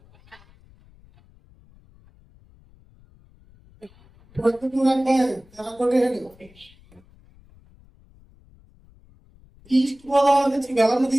అంటే తెలంగాణ ఈస్ట్ గోదావరి నుంచి వెలమ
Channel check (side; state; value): left; noise; rumble, 28 dB below the sound